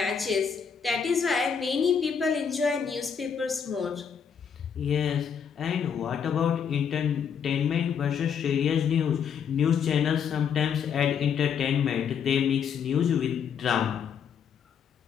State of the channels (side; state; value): right; quieter; 7.2 dB